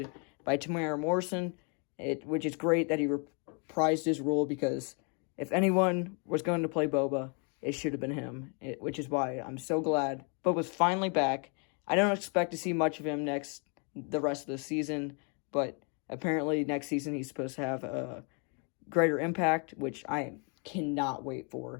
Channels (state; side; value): quieter; right; 36.8 dB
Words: by Tamara Morrison, which is great that he reprised his role, because if anyone was going to play Boba, it should have been him, which is why I'm so glad Boba's finally back. I don't expect to see much of him the rest of the season, but apparently next season he's supposed to have a greater impact, which I cannot wait